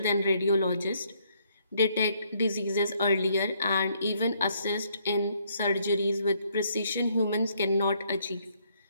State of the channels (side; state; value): both; inverted; correlation -0.69